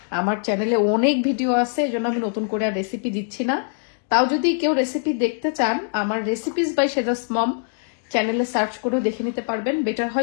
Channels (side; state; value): right; silent; digital silence